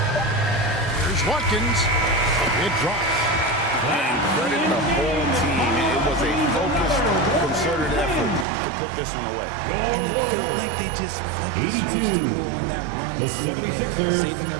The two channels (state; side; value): drops out; left; at 8.5 s